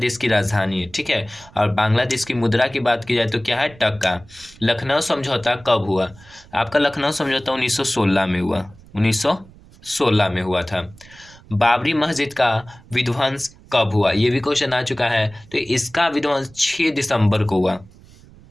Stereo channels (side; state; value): right; noise; rumble, 24 dB below the sound